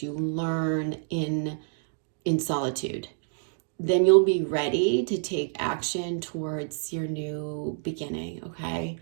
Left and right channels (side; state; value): left; silent; digital silence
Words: you learn in solitude. Then you'll be ready to take action towards your new beginning, okay?